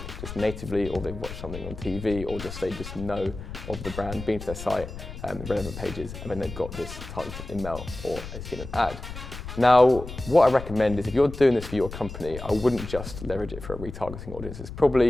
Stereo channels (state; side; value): noise; left; rumble, 10 dB below the sound